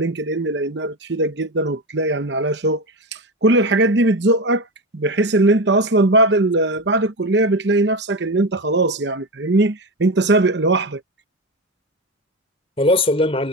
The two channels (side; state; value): both; normal; correlation 0.19